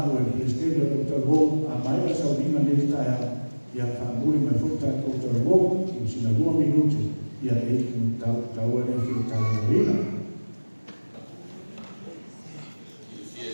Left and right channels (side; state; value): both; inverted; correlation -1.00